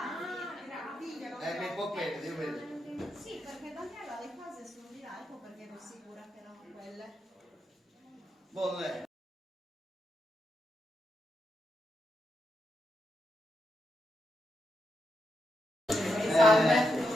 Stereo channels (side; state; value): both; normal; correlation 0.84